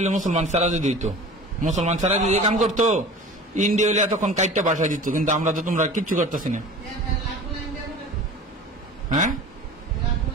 মুসলমান ছাড়া যদি দিত, মুসলমান ছাড়া যদি কাম করতো, ইন্ডিয়া হইলে এতক্ষণ কাইটটা বাসায় দিত। কিন্তু আমরা তো তোমরা কিচ্ছু করতেছি না। হ্যাঁ,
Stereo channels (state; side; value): normal; both; correlation 0.39